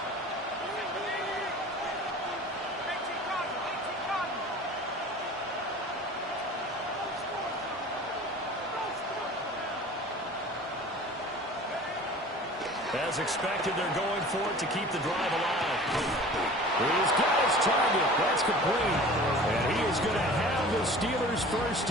As expected, they're going for it to keep the drive alive. He's got his target. That's complete. And he is going to have the Steelers' first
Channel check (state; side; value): normal; both; correlation 0.42